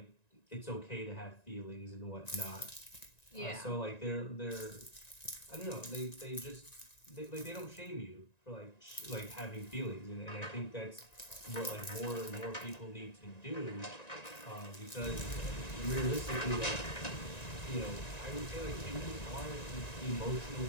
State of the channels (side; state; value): right; late; 1.9 ms